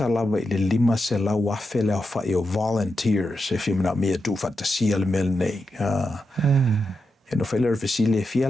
lava I le 5 se lau afe leo whai o volunteers e whimina mea tu whatasia le mele nei E no whailera whesile fia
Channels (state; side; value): normal; both; correlation 0.87